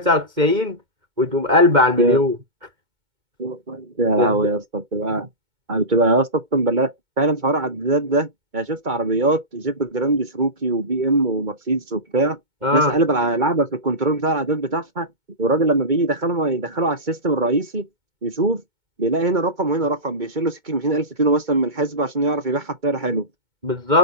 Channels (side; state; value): left; late; 2.3 ms